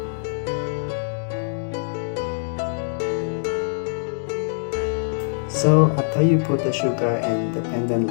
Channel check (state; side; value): silent; right; digital silence